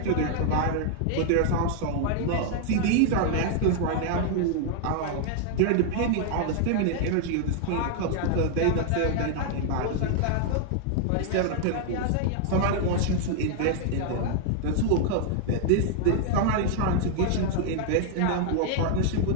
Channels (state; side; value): different; both; correlation 0.00